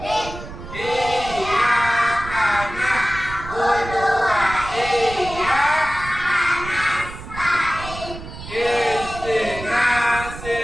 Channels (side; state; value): right; noise; rumble, 12 dB below the sound